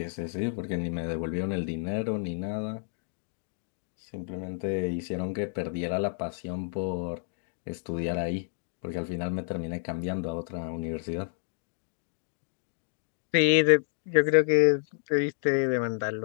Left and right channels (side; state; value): right; silent; digital silence